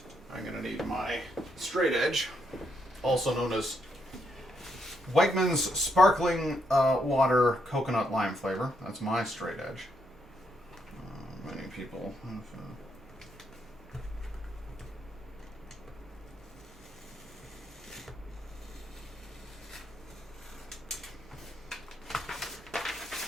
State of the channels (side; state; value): both; normal; correlation 0.77